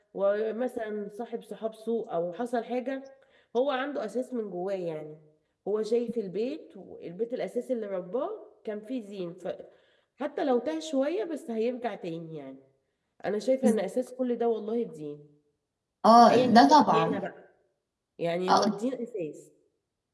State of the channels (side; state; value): both; identical; correlation 1.00